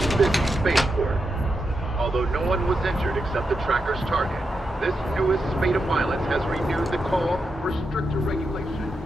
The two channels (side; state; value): both; normal; correlation 0.86